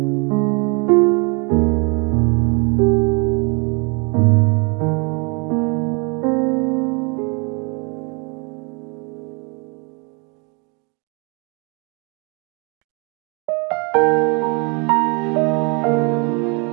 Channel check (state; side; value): quieter; left; 32.5 dB